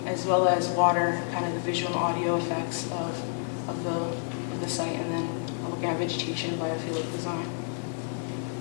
as well as water, kind of the visual audio effects of the site, and then looking at vegetation and biophilic design.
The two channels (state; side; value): silent; right; 59 dB below the other